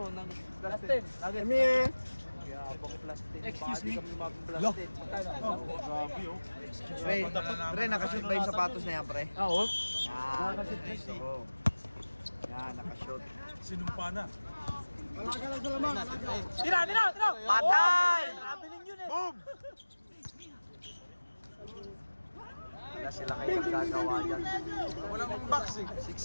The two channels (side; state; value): both; inverted; correlation -1.00